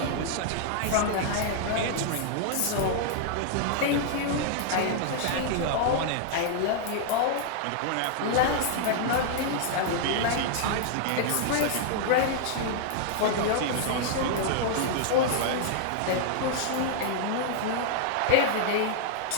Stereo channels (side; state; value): both; different; correlation -0.01